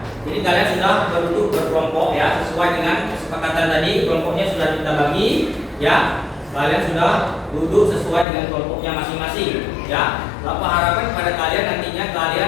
Jadi kalian sudah berduduk berkelompok, ya, sesuai dengan kesepakatan tadi. Kelompoknya sudah kita bagi, ya. Kalian sudah duduk sesuai dengan kelompoknya masing-masing, ya. Bapak harapkan pada kalian nantinya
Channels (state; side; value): drops out; right; at 8.2 s